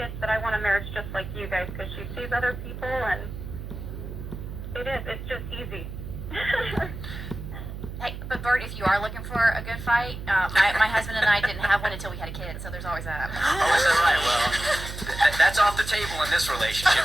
said, I want a marriage just like you guys, because she sees other people, and it's just easy. Hey, but But Bert, if you are looking for a good fight, my husband and I didn't have one until we had a kid, so there's always that. Oh, is that right? Well, that's off the table in this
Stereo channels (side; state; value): right; noise; hum, 9 dB below the sound